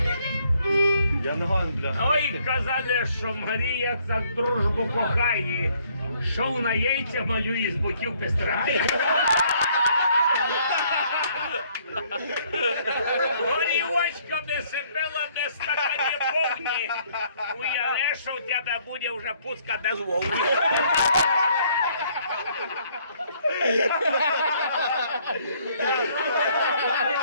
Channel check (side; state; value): both; inverted; correlation -0.65